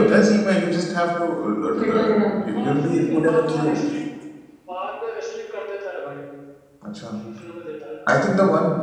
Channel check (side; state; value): both; identical; correlation 1.00